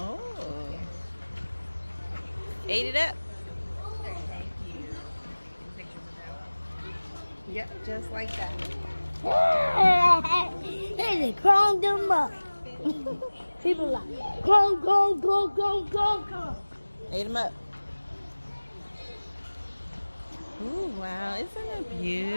Ate it up. Yep, just like that. They crawled them up. People like, go, go, go, go, go, go. Ate them up. Ooh, wow. Isn't it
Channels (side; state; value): both; inverted; correlation -1.00